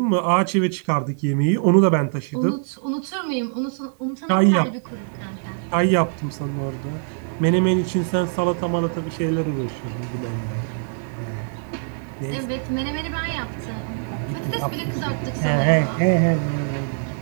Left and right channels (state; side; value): silent; left; digital silence